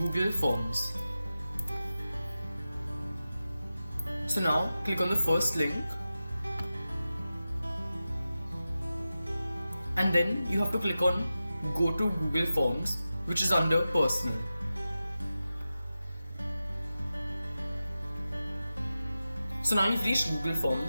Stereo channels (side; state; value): both; inverted; correlation -0.93